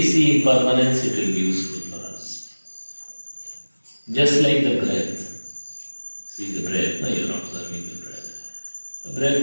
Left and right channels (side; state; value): both; inverted; correlation -1.00